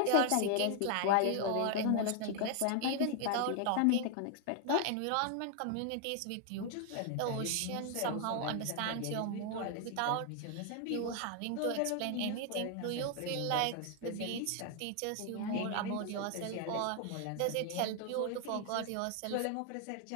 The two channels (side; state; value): both; different; correlation 0.00